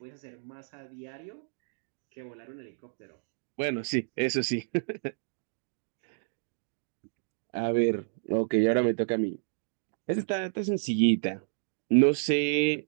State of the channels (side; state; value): left; silent; digital silence